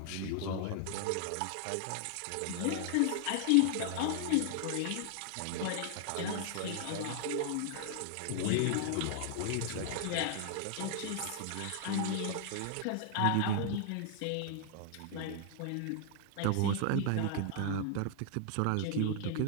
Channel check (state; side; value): different; both; correlation 0.00